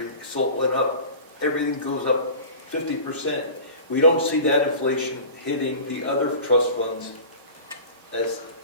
Salt went up, everything goes up 50%. We don't see that inflation hitting the other trust funds as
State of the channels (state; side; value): inverted; both; correlation -0.37